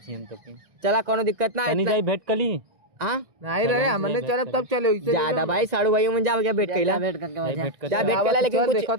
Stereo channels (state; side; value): late; left; 1.6 ms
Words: छी हम तो के चला कोनो दिक्कत ना तनी जाई भेंट कली हां नहीं रहे हमने चले तब चले ज्यादा भाई साड़ू भाई में जा भेंट कैला भेंट करके जा भेंट कैला लेकिन